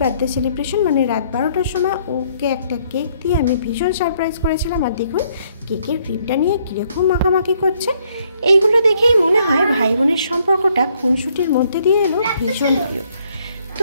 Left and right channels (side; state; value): both; inverted; correlation -0.68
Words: বার্থডে সেলিব্রেশন, মানে রাত 12টার সময় ওকে একটা কেক দিয়ে আমি ভীষণ সারপ্রাইজ করেছিলাম। আর দেখুন কেকের ক্রিমটা নিয়ে কীরকম মাখামাখি করছে। এইগুলো দেখেই মনে হয় ভাই বোনের সম্পর্কটা খুনসুটির মধ্যে দিয়ে এলো ভীষণ প্রিয়।